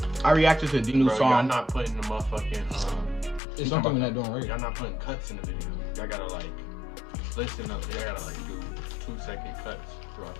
I reacted to the new nigga? Bro, y'all song. not putting the motherfucking, It's something we're not doing right. y'all not putting cuts in the video. Y'all gotta like, listen up. Y'all gotta like do 2-second cuts throughout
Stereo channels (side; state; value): right; drops out; at 3.4 s